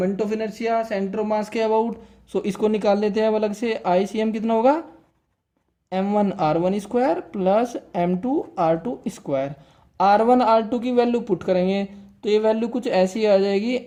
of inertia centre of mass के अबाउट। सो इसको निकाल लेते हैं अब अलग से। ICM कितना होगा, M1 R1 square plus M2 R2 square. R1 R2 की वैल्यू पुट करेंगे तो ये वैल्यू कुछ ऐसी आ जाएगी,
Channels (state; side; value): identical; both; correlation 1.00